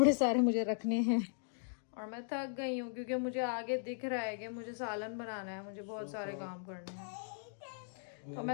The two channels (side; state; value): right; silent; digital silence